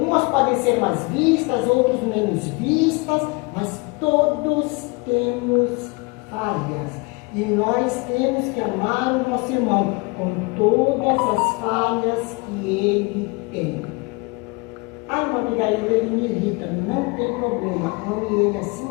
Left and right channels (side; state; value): right; quieter; 28.1 dB